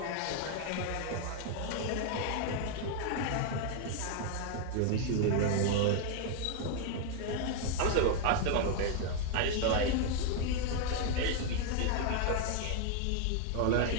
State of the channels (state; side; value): different; both; correlation 0.00